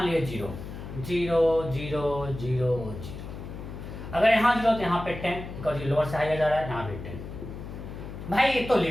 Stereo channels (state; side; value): noise; left; hum, 10 dB below the sound